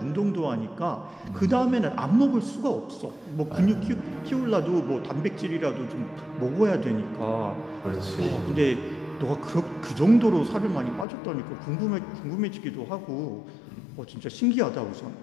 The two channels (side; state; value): right; drops out; at 11.1 s